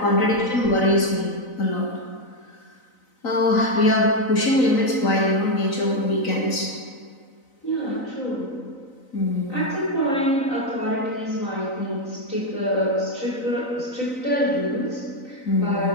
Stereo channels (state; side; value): late; right; 4.0 ms